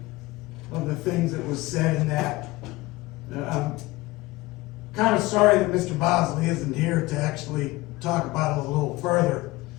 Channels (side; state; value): right; quieter; 20.3 dB